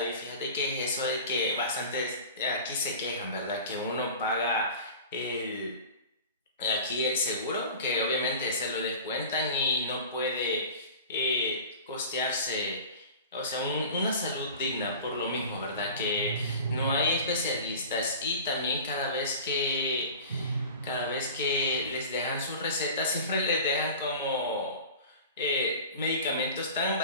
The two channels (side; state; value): both; inverted; correlation -0.37